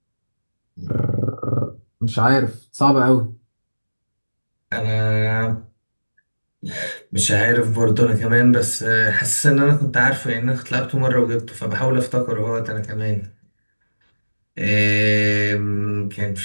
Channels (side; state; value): both; inverted; correlation -1.00